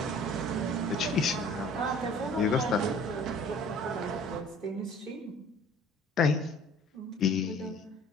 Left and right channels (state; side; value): normal; both; correlation 0.50